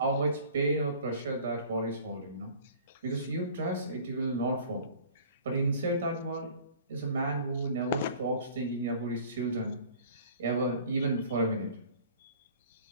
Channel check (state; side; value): inverted; both; correlation -0.48